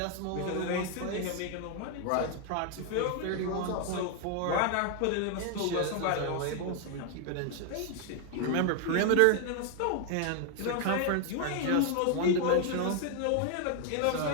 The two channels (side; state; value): both; different; correlation 0.00